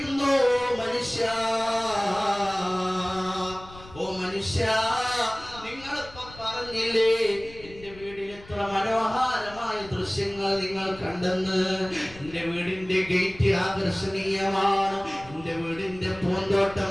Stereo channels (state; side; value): noise; left; rumble, 19 dB below the sound